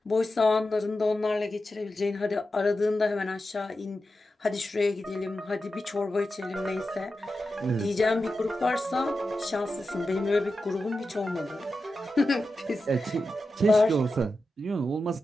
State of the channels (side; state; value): both; normal; correlation 0.91